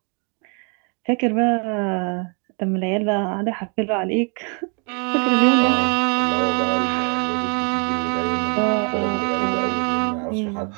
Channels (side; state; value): left; quieter; 37.2 dB